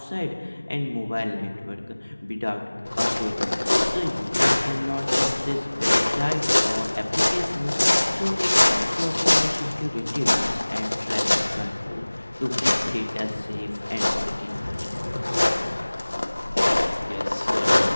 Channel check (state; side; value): inverted; both; correlation -1.00